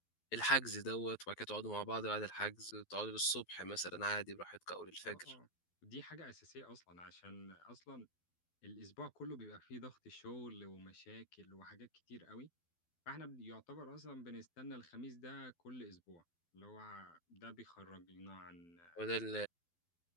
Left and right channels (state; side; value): late; right; 12 ms